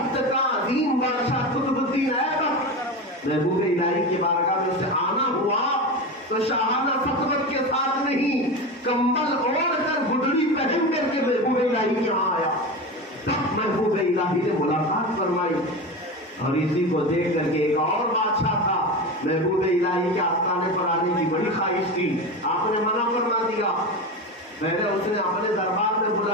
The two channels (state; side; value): normal; both; correlation 0.23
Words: کا عظیم بادشاہ قطب الدین ایبک محبوب الہی کی بارگاہ میں سے آنا ہوا تو شاہانہ سطوت کے ساتھ نہیں، کمبل اوڑھ کر گڈڑی پہن کر کے محبوب الہی یہاں آیا. تب محبوب الہی نے ملاقات فرمائی. اور اسی کو دیکھ کر کے ایک اور بادشاہ تھا، محبوب الہی کے آستانے پر آنے کی بڑی خواہش تھی، آپ نے منع فرما دیا. پہلے اس نے اپنے دربار میں